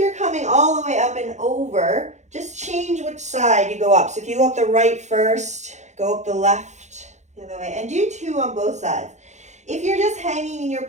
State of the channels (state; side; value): late; left; 0.34 ms